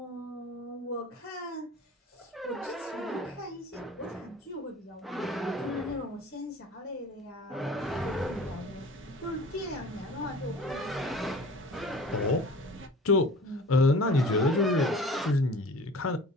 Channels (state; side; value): normal; both; correlation 0.43